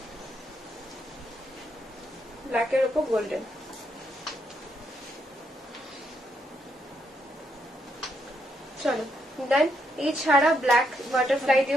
ব্ল্যাকের উপর গোল্ডেন। চলো দেন এই ছাড়া ব্ল্যাক বাটারফ্লাই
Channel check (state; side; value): normal; both; correlation 0.77